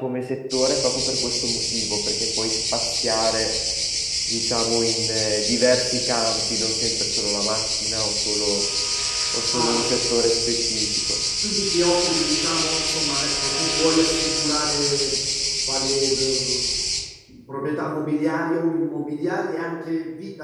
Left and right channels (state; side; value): identical; both; correlation 1.00